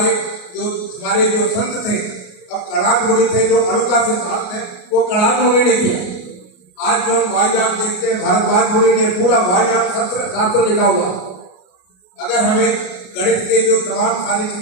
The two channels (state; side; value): late; right; 33 ms